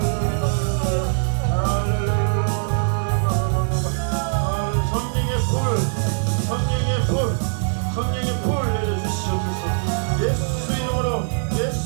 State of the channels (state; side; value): silent; left; 64 dB below the other